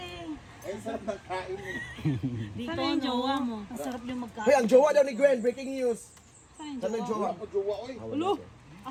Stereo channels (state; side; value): identical; both; correlation 1.00